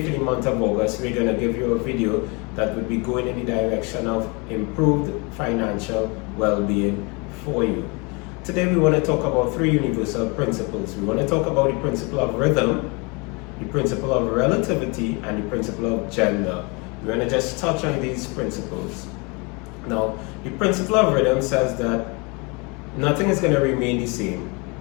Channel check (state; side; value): quieter; right; 29.9 dB